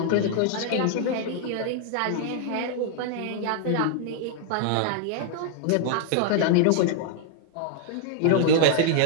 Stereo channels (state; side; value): different; both; correlation -0.01